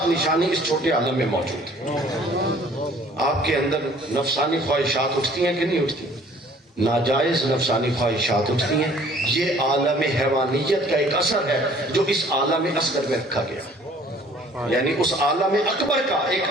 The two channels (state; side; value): normal; both; correlation 0.55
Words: نشانی اس چھوٹے عالم میں موجود ہے۔ آپ کے اندر نفسانی خواہشات اٹھتی ہیں کہ نہیں اٹھتی؟ ناجائز نفسانی خواہشات اٹھتی ہیں، یہ عالم حیوانیت کا ایک اثر ہے جو اس عالم اصغر میں رکھا گیا، یعنی اس عالم اکبر کا